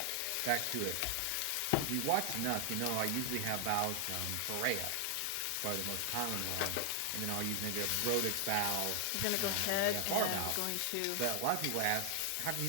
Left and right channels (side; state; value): both; different; correlation 0.00